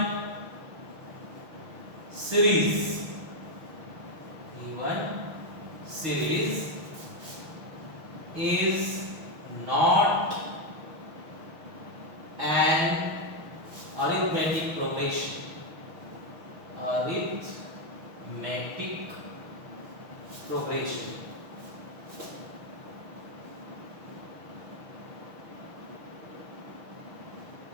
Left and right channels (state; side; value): late; left; 6.2 ms